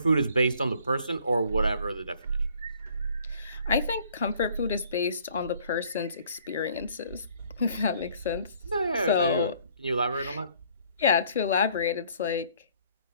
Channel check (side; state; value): both; inverted; correlation -0.59